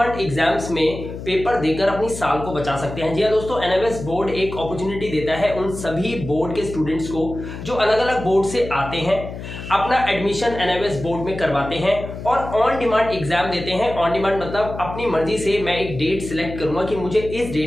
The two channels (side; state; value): left; noise; hum, 10 dB below the sound